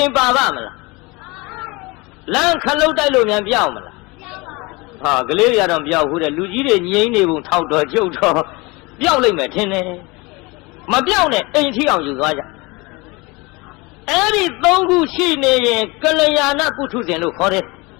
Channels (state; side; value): quieter; right; 25.2 dB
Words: မ်ပါပါမလားလမ်းခလုတ်တိုက်လို့မြန်ပြောင်းမလား ဟာကလေးရတော့ပြောက်ဘူးတဲ့လူကြီးတွေငိမ့်နေပုံထောက်တော့ကျုပ်တော့ပြောက်လိုက်မယ်ထင်တယ်မပြောက်နဲ့အိမ်ထီအောင်ယူသွားကြအဲ့ဒီသုံးခုရှိနေရင်ကလျာဏပုထုဇဉ်လို့ခေါ်တယ်